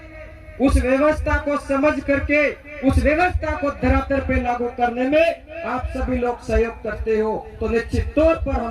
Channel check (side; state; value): both; identical; correlation 1.00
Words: उस व्यवस्था को समझ करके उस व्यवस्था को धरातल पे लागू करने में आप सभी लोग सहयोग करते हो, तो निश्चित तौर पर